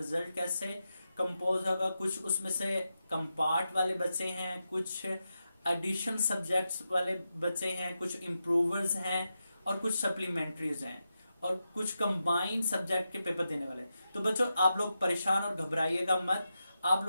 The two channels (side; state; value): both; inverted; correlation -0.89